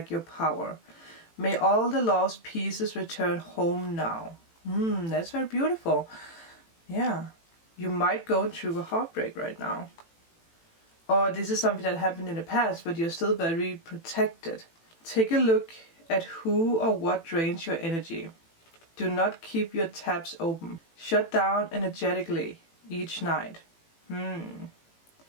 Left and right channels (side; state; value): right; late; 18 ms